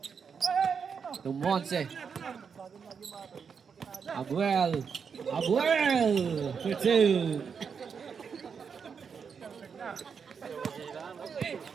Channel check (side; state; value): left; quieter; 6.3 dB